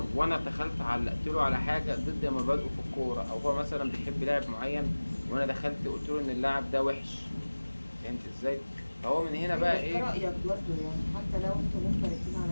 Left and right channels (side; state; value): both; inverted; correlation -1.00